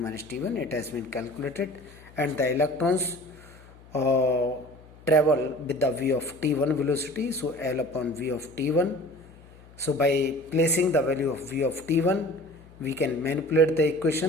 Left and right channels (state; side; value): noise; left; hum, 23 dB below the sound